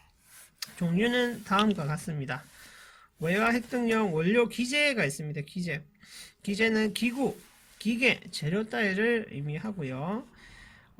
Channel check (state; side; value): identical; both; correlation 1.00